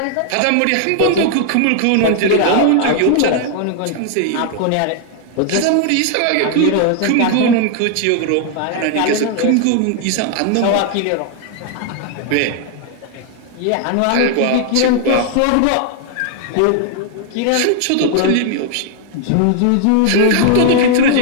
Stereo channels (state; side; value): different; both; correlation 0.00